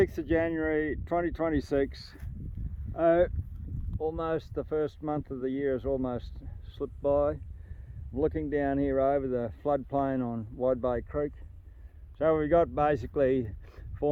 of January 2026. Almost the first month of the year has almost slipped by. I'm looking down here over the floodplain on Wide Bay Creek. So we've got basically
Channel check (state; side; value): identical; both; correlation 1.00